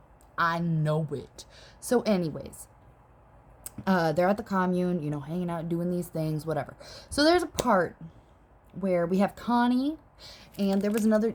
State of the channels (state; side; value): identical; both; correlation 1.00